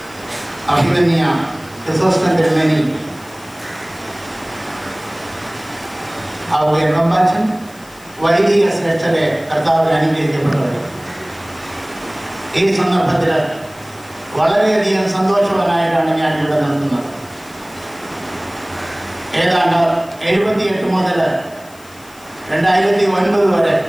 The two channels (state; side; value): noise; left; hiss, 24 dB below the sound